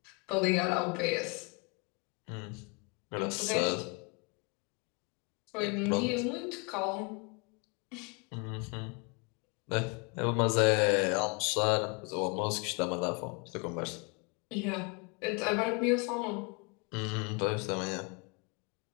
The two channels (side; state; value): right; quieter; 32.1 dB